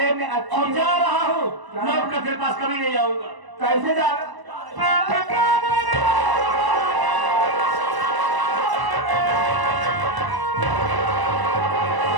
मैं अच्छी और जा रहा हूँ, लौट कर तेरे पास कभी नहीं आऊंगा। कैसे जा रहा? साथ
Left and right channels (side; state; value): left; late; 1.0 ms